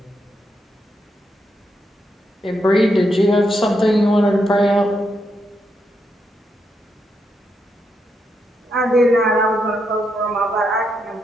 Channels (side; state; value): both; normal; correlation 0.81